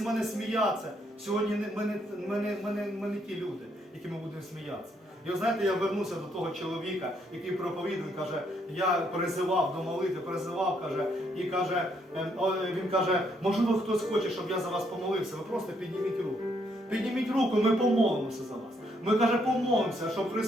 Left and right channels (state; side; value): normal; both; correlation 0.72